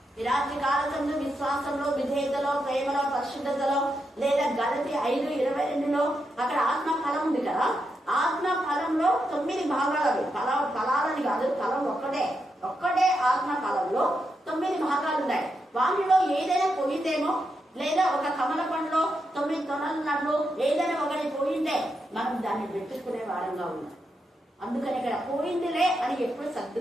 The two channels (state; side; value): normal; both; correlation 0.84